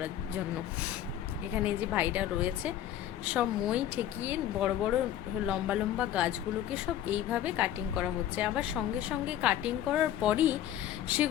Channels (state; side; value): quieter; right; 11.5 dB